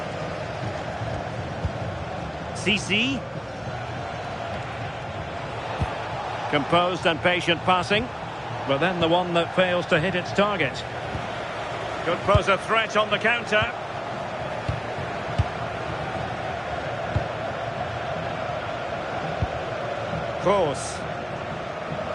CC. Composed and patient passing, but then the one that fails to hit its target. Could pose a threat on the counter. Kroos.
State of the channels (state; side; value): identical; both; correlation 1.00